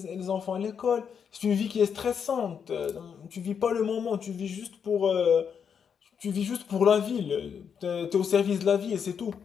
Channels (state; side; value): quieter; right; 7.2 dB